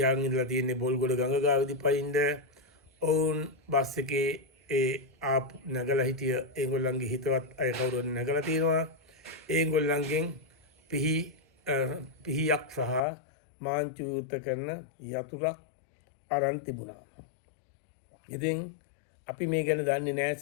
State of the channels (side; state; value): right; drops out; at 13.0 s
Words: ඉඳලා තියෙන්නේ බොල්ගොඩ ගඟ ගාවදී පයින්න. ඔවුන් බස් එකේ ඒ ආපු නැගලා හිටිය ඒගොල්ලන්ගේ හිතවත් අය කවුරුන් නැගලා තියෙනවා. ඒගොල්ලන්ගෙන් පිහියක් සහ මාංචු යුත් කරන යතුරක් අරන් තිබුණා. ඉතින් අපි මේ ගැන දන්නේ නැහැ.